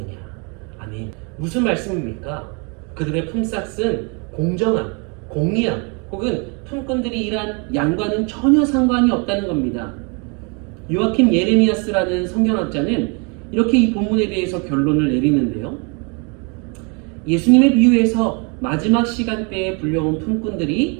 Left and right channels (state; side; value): quieter; left; 33.9 dB